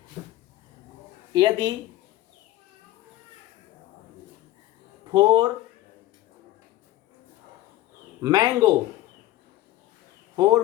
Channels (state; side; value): quieter; right; 15.3 dB